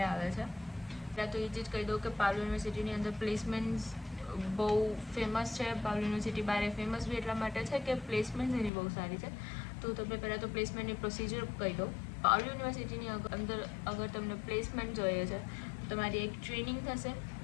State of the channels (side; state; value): right; drops out; at 8.7 s